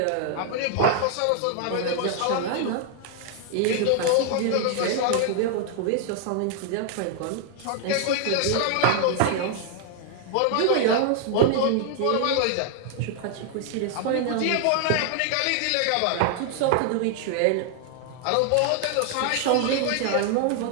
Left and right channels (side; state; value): both; different; correlation 0.00